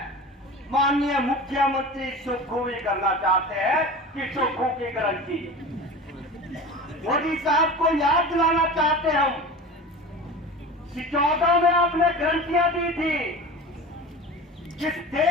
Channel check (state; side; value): normal; both; correlation 0.33